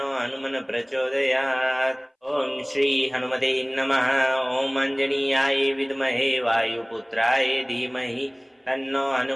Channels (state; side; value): identical; both; correlation 1.00